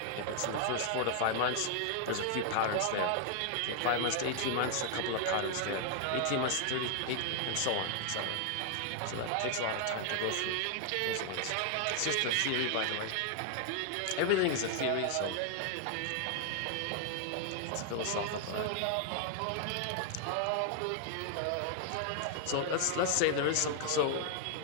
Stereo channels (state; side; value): different; both; correlation 0.00